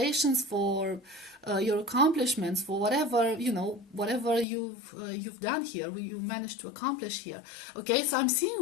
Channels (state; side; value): drops out; right; at 4.5 s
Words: for your accomplishments, for whatever you've done here, you managed to accomplish here. Okay, so I'm